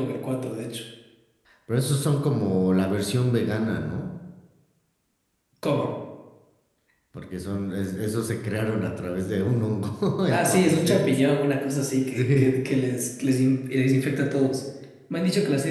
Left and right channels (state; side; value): identical; both; correlation 1.00